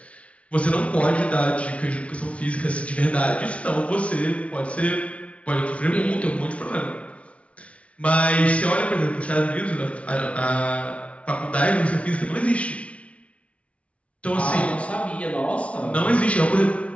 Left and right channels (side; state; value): right; late; 0.063 ms